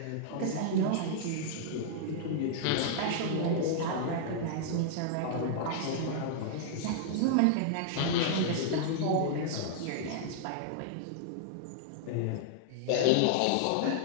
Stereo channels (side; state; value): both; different; correlation -0.01